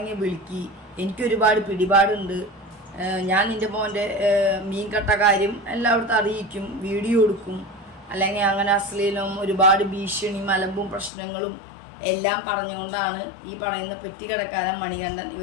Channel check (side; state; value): right; drops out; at 11.1 s